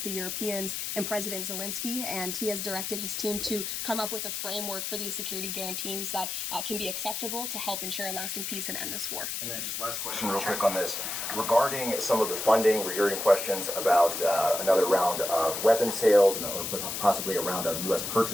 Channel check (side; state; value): left; noise; hiss, 3 dB below the sound